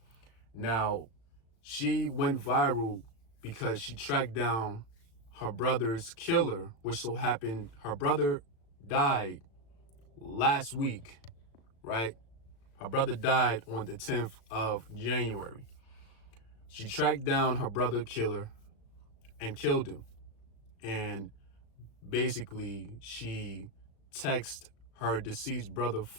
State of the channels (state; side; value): late; right; 36 ms